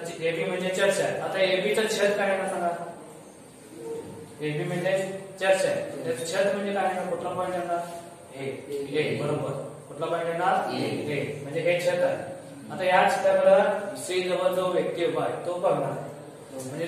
ए बी म्हणजे चर्च आहे आता ए बी चं छत काय आहे सांगा ए बी म्हणजे चर्च आहे त्याचं छत म्हणजे काय आहे कुठला पॉईंट येणार ए बरोबर कुठला पॉईंट येणार ए म्हणजे हे छत आहे आता या छताकडे सी जवळ जो व्यक्ती उभा आहे तो बघणार म्हणजे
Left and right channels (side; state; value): both; identical; correlation 1.00